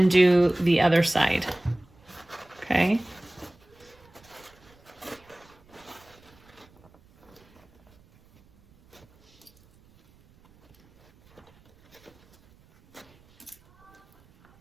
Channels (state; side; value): noise; right; rumble, 30 dB below the sound